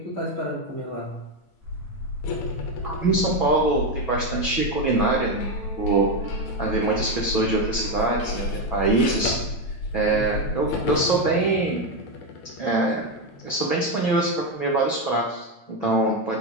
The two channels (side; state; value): right; late; 8.9 ms